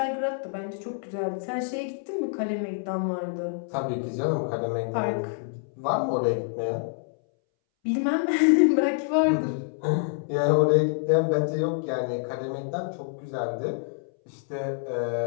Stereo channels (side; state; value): right; silent; 60 dB below the other